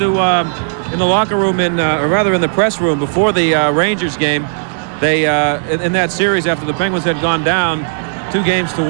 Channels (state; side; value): silent; left; digital silence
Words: in the locker room, or rather in the press room before the Rangers game, they in that series after the Penguins had gone down